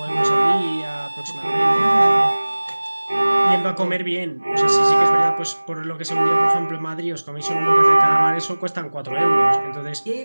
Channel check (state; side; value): inverted; both; correlation -1.00